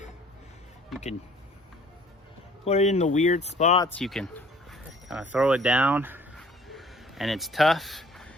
you can put it in the weird spots. You can kind of throw it down and it's tough.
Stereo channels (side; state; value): both; normal; correlation 0.54